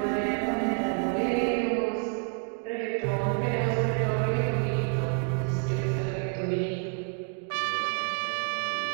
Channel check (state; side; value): quieter; left; 39.9 dB